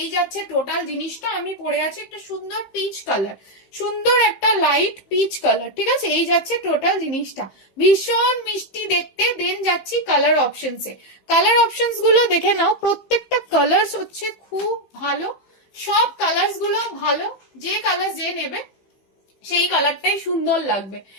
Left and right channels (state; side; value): late; right; 15 ms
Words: এই যাচ্ছে টোটাল জিনিসটা। আমি পরে আছি একটা সুন্দর পিচ কালার, সুন্দর একটা লাইট পিচ কালার, ঠিক আছে। এই যাচ্ছে টোটাল জিনিসটা, ভীষণ মিষ্টি দেখতে। দেন যাচ্ছি কালার অপশনসে। কালার অপশনস গুলো দেখে নাও, প্রত্যেকটা কালার্স হচ্ছে খুব ভালো, সব কালার্স গুলো ভালো। যে কালার যে নেবে সেই কালারটাই সুন্দর লাগবে।